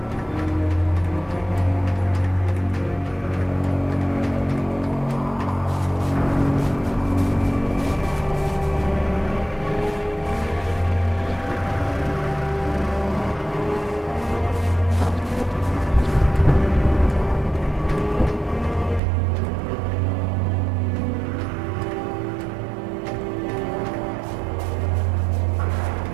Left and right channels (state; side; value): drops out; left; at 19.0 s